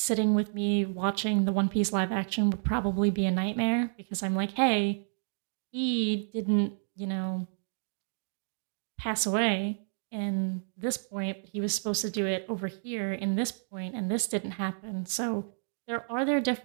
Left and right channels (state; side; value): silent; left; digital silence